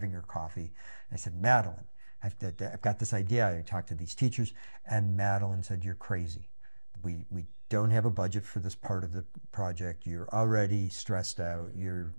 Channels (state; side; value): inverted; both; correlation -1.00